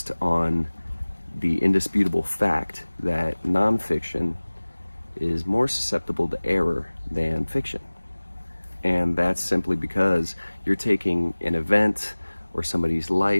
on the indisputable fact that nonfiction is more susceptible to error than fiction. And that's simply because you're taking an event or somebody's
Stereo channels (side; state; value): both; inverted; correlation -1.00